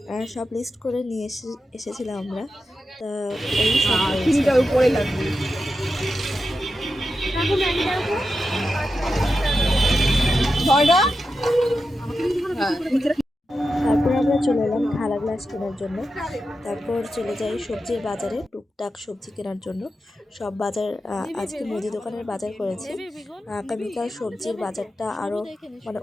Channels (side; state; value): both; normal; correlation 0.90